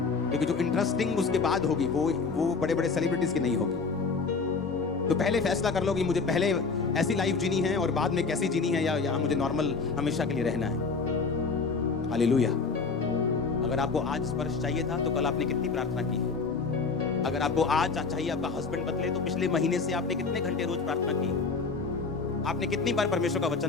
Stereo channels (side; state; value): right; quieter; 4.6 dB